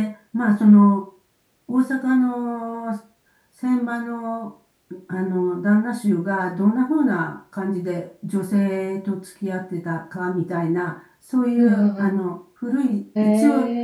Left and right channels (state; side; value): identical; both; correlation 1.00